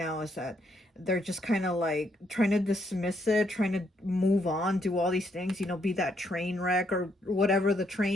is that they're just kind of like trying to dismiss it, trying to move on, do all these things, you know, be that train wreck or whatever the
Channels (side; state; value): both; normal; correlation 0.74